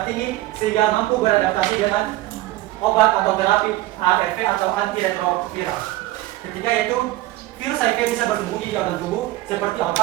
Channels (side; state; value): left; quieter; 17.0 dB